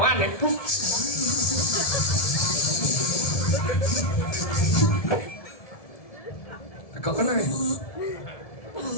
nih. Kau kena ya?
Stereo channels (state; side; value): late; right; 1.7 ms